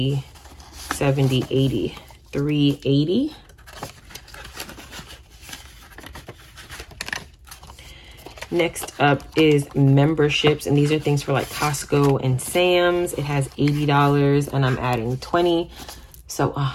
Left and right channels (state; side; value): identical; both; correlation 1.00